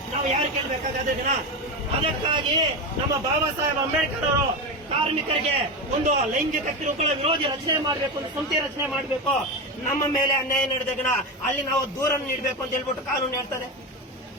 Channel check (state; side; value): normal; both; correlation 0.17